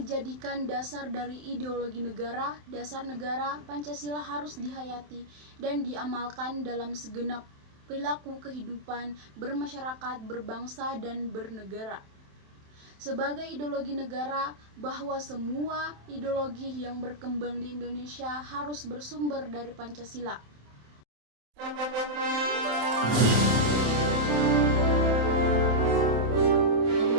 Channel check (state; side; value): late; left; 27 ms